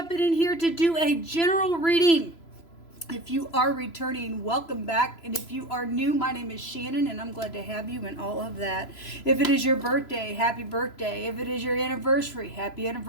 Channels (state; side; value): late; right; 3.0 ms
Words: in here to do a general reading. If you are returning, welcome back. And if you are new, my name is Shannon and I'm glad to have you and all of that. If it is your birthday, happy birthday. If it is your anniversary, happy